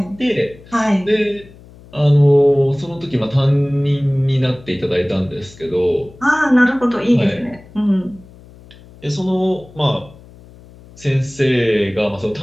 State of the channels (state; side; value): noise; left; hum, 22 dB below the sound